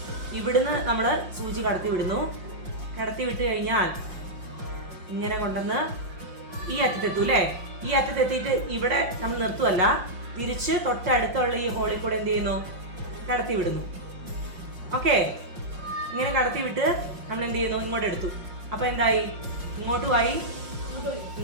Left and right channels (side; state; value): left; late; 5.6 ms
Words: ഇവിടുന്ന് നമ്മൾ സൂചി കടത്തി വിടുന്നു. കടത്തി വിട്ട് കഴിഞ്ഞാൽ ഇങ്ങനെ കൊണ്ടുവന്ന് ഈ അറ്റത്തെത്തും അല്ലേ? ഈ അറ്റത്തെത്തിയിട്ട് ഇവിടെ നമ്മൾ നിർത്തുമല്ല, തിരിച്ച് തൊട്ടടുത്തുള്ള ഈ ഹോളിൽ കൂടെ എന്ത് ചെയ്യുന്നു, കടത്തി വിടുന്നു. ഓക്കെ, ഇങ്ങനെ കടത്തി വിട്ട് നമ്മൾ എന്ത് ചെയ്യുന്നു, ഇങ്ങോട്ട് എടുത്തു. അപ്പോൾ എന്തായി, ഇങ്ങോട്ടുമായി.